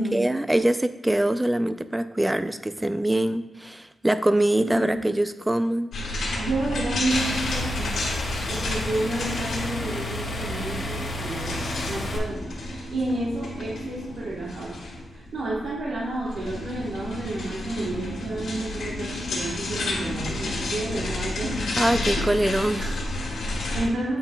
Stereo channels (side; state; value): both; normal; correlation 0.90